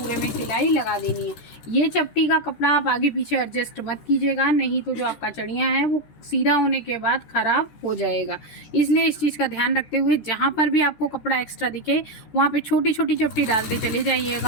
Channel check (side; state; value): right; late; 13 ms